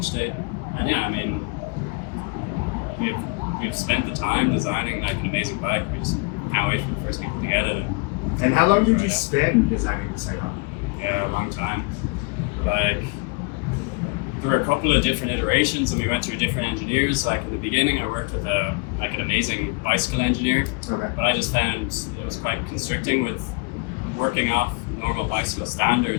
date. And yeah, I mean, we've spent the time designing like an amazing bike. We just can't wait for the first people to get it. And how long did you spend designing the SAIGON? Yeah, a long time. Like, there were a couple of different iterations and we went through different engineers. Like in the beginning I worked with an amazing bicycle engineer, Okay. but I just found it was quite constricting with working off normal bicycle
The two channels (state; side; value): quieter; right; 28.3 dB